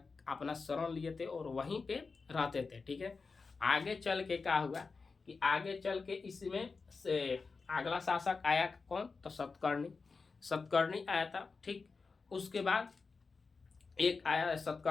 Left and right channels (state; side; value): quieter; right; 4.5 dB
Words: अपना शरण लिए थे और वहीं पे रहते थे, ठीक है। आगे चल के क्या हुआ कि आगे चल के इसमें से अगला शासक आया कौन तो सतकर्णी आया था, ठीक। उसके बाद एक आया